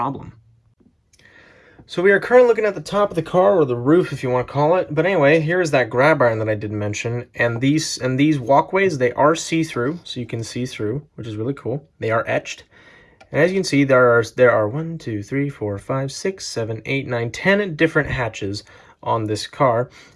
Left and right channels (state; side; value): identical; both; correlation 1.00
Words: So we are currently looking at the top of the car, or the roof if you want to call it. But anyway, here is that grab iron that I did mention, and these walkways, they are see-through, so you can see through, which is really cool. They are etched. And as you can see, there are 1, 2, 3, 4, 5, 6, 7, 8, 9, 10 different hatches on this car,